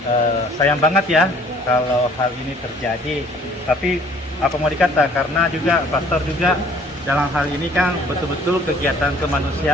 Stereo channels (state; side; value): normal; both; correlation 0.56